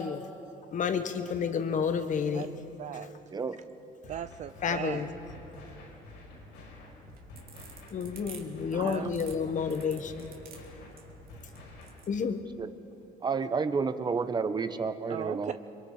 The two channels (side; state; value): both; normal; correlation 0.47